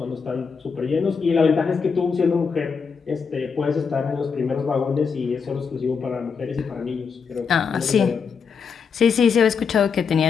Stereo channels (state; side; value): quieter; right; 5.8 dB